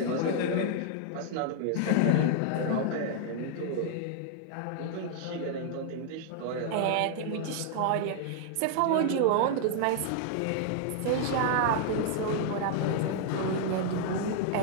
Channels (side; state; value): both; different; correlation 0.00